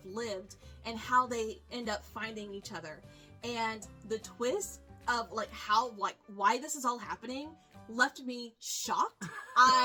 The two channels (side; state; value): both; identical; correlation 1.00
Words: lived and how they end up finding each other. And the twist of why this is all happening left me shocked.